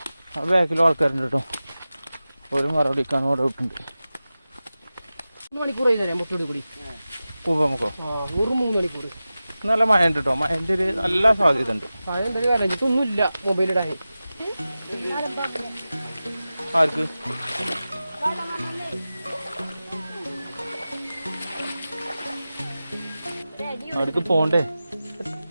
ആ ബാക്കിലും ആൾക്കാരുണ്ട് കേട്ടോ. ഒരു മറുപടിക്കാൻ അവിടെ വിട്ടുണ്ട്. മണിക്കൂർ കൂടി കൂപ്പമുക്കോ ഒരു 3 മണിക്കൂർ. നല്ല മഴ ഉണ്ട് കേട്ടോ. മഴൻ്റെ ഒരു നല്ല സാധ്യത ഉണ്ട്. മഴ എന്തായാലും വരഞ്ഞിട്ടൊന്നുമില്ല മൊബൈലിടാൻ. ആർക്ക്? അവിടേക്ക് പോണ്ടേ?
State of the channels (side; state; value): both; inverted; correlation -0.95